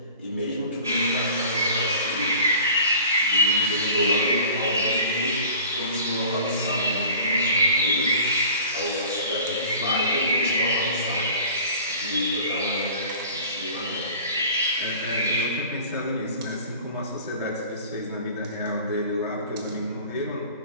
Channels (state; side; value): inverted; both; correlation -0.44